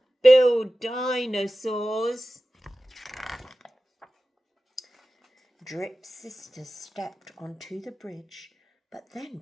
dinosaurs. Drip's sisters stepped onto the bridge, but then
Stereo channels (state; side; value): normal; both; correlation 0.94